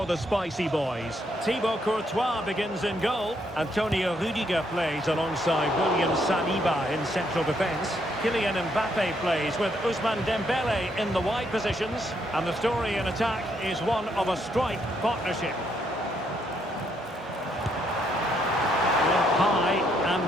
the Spicy Boys. Thibaut Courtois begins in goal. Antonio Rudiger plays alongside William Saliba in central defence. Kylian Mbappe plays with Ousmane Dembele in the wide positions. And the story in attack is one of a strike partnership. High and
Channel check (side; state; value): both; normal; correlation 0.74